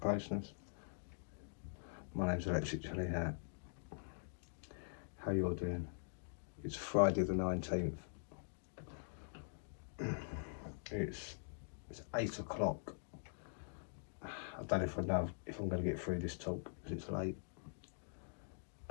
My name's Electric Jelly Hat. How you all doing? It's Friday the 19th. It's 8 o'clock. I don't know if I know if I'm going to get through this talk because it's late.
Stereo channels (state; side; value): silent; right; digital silence